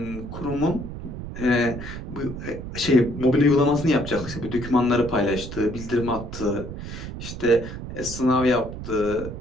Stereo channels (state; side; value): noise; right; rumble, 9 dB below the sound